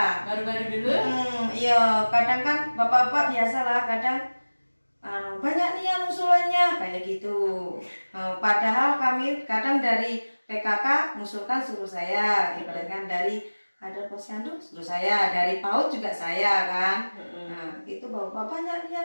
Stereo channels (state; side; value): inverted; both; correlation -1.00